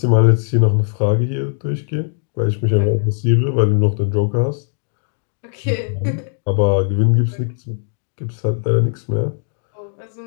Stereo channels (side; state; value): right; silent; digital silence